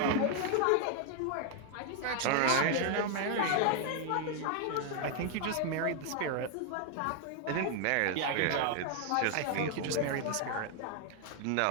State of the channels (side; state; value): both; different; correlation 0.00